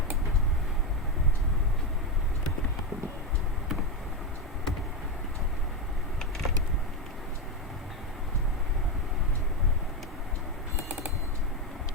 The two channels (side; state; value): both; normal; correlation 0.10